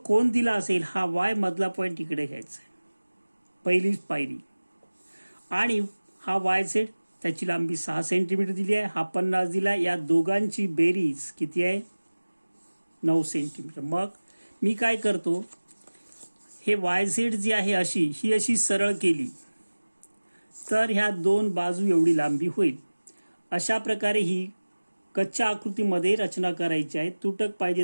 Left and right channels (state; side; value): inverted; both; correlation -1.00